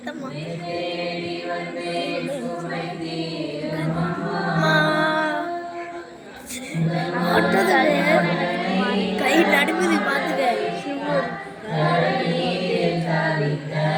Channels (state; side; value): identical; both; correlation 1.00